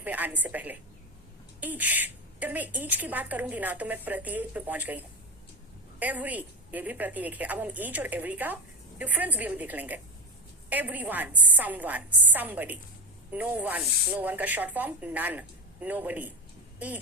में आने से पहले ईच, जब मैं ईच की बात करूंगी ना तो मैं प्रत्येक पे पहुंच गई हूं। एवरी, ये भी प्रत्येक है। अब हम ईच और एवरी का डिफरेंस भी अभी देख लेंगे। Everyone, someone, somebody. No one, no one का short form none, nobody.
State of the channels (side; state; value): both; normal; correlation 0.19